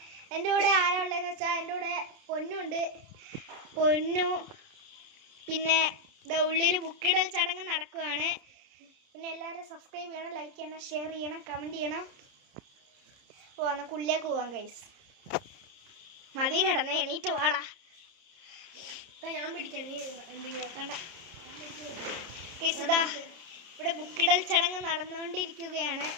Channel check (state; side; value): late; left; 30 ms